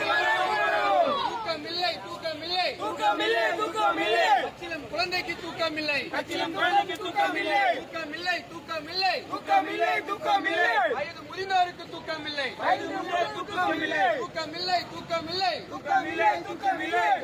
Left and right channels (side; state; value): both; identical; correlation 1.00